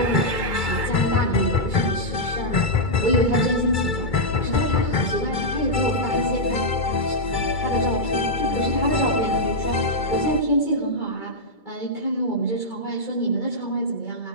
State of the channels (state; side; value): late; right; 2.3 ms